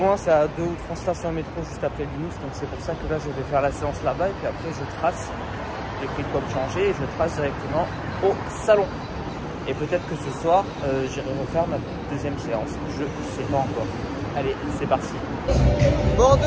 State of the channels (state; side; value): identical; both; correlation 1.00